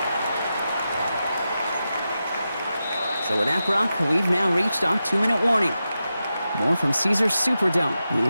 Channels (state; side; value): inverted; both; correlation -0.90